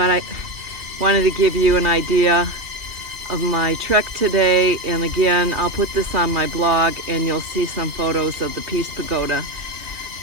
I wanted to give you an idea of my trek today. And again, I'll put this on my blog and you'll see some photos of the Peace Pagoda.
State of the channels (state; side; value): late; left; 3.0 ms